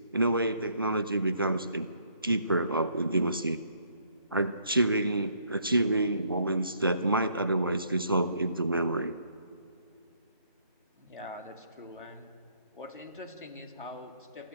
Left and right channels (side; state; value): both; inverted; correlation -0.67